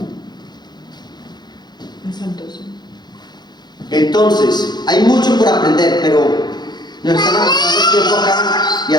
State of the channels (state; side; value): late; right; 0.21 ms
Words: Entonces, hay mucho por aprender, pero nos están avanzando el tiempo acá y